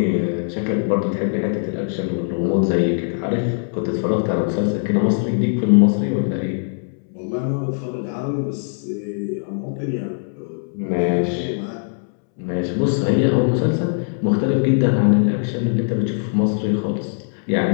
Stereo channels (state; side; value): silent; right; 65 dB below the other